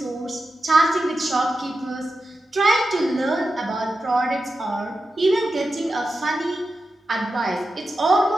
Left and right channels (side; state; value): both; normal; correlation 0.91